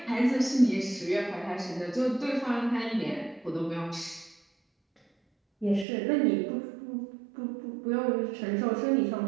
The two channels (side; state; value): left; drops out; at 5.9 s